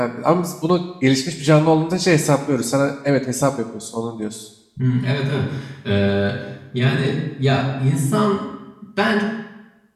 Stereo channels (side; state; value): both; identical; correlation 1.00